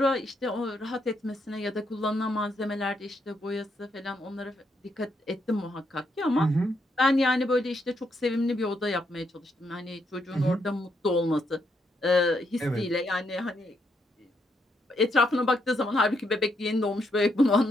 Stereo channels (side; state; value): both; normal; correlation 0.78